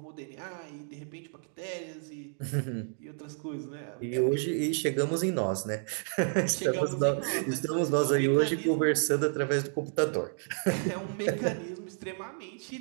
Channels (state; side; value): silent; left; 57 dB below the other